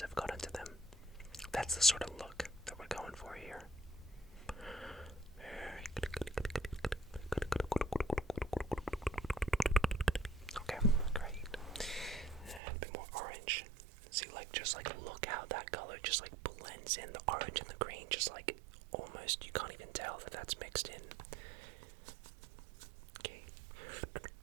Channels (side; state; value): left; drops out; at 12.6 s